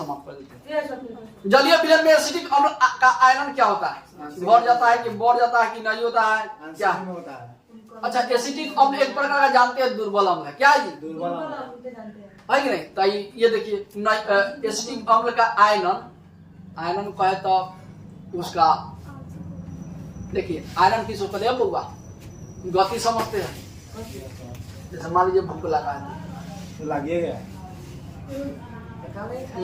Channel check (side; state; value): both; identical; correlation 1.00